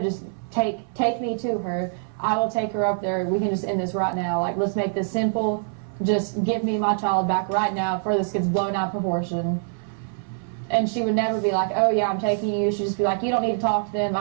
just take me to her. I will take her up there. We can just end this right now. Like, let's make this simple. Just give me my child back right now before this gets blown out of proportion. And she would never be like, oh yeah, I'm taking you. She'd just be like, you don't need to talk to them.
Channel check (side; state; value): left; silent; 58 dB below the other